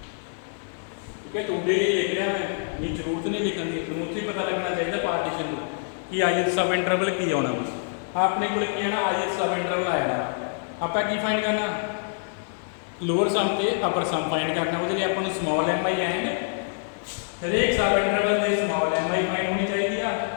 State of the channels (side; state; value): right; silent; digital silence